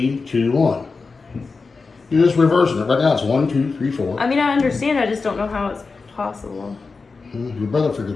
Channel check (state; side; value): quieter; right; 4.4 dB